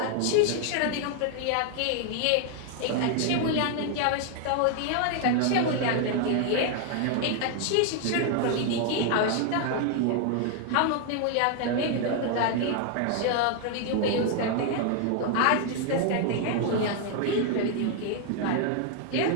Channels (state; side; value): different; both; correlation 0.00